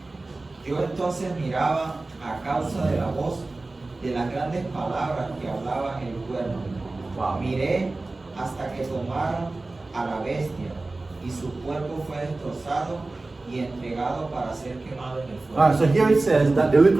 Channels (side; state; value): left; quieter; 3.2 dB